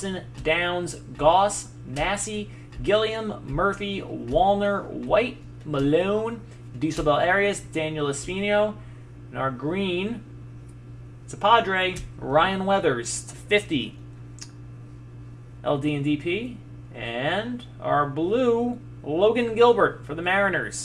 Downs, Goss, Massey, Gilliam, Murphy, Wallner, White, Malone, Dieselbell Arias, Daniel Espino, and our green, it's a Padre, Ryan Weathers, to 50, LD and DP, and our blue, Logan Gilbert for the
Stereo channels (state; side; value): identical; both; correlation 1.00